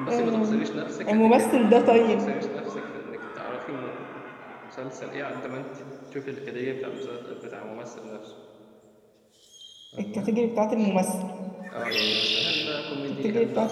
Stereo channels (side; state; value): both; identical; correlation 1.00